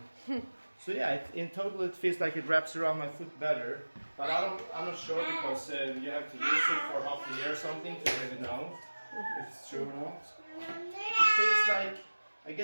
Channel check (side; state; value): both; inverted; correlation -1.00